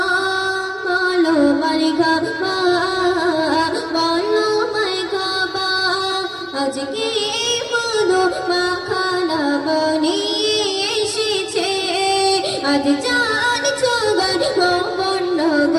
বলো মারহাবা, বলো মারহাবা। আজকে মধু মাখানা বানিয়ে এসেছে, আজ যার ছগায় ভুবন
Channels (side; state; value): both; identical; correlation 1.00